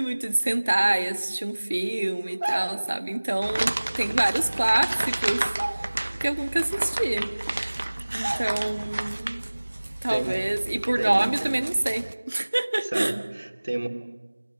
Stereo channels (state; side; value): inverted; both; correlation -1.00